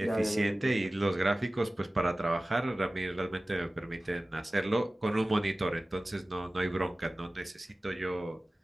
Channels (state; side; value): normal; both; correlation 0.97